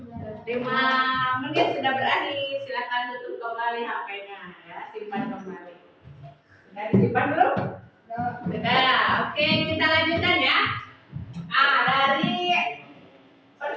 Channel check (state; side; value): identical; both; correlation 1.00